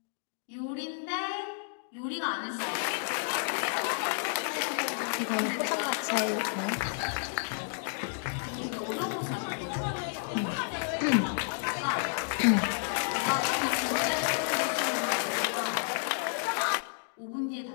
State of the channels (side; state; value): right; silent; digital silence